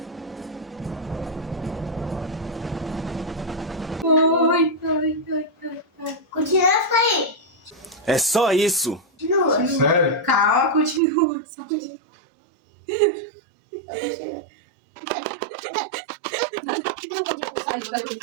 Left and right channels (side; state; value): left; drops out; at 11.0 s